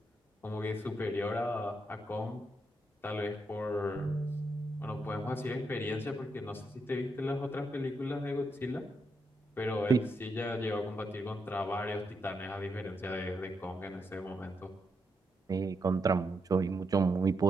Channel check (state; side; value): normal; both; correlation 0.82